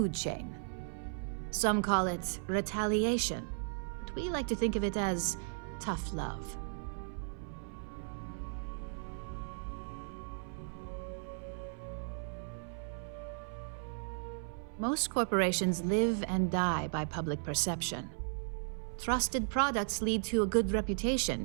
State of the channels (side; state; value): left; silent; 54 dB below the other